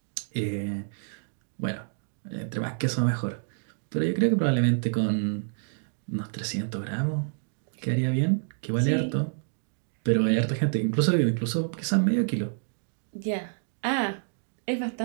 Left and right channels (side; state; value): left; silent; digital silence